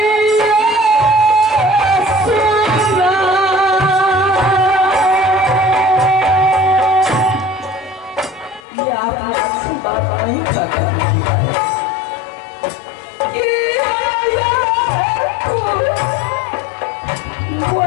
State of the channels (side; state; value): right; drops out; at 8.7 s